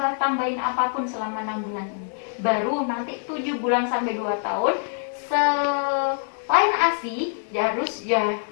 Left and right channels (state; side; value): silent; right; 62 dB below the other